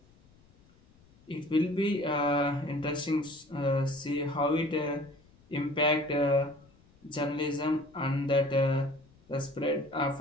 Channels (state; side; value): noise; left; rumble, 29 dB below the sound